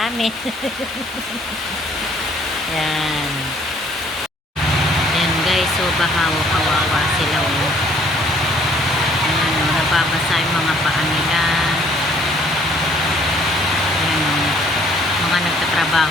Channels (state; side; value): normal; both; correlation 0.60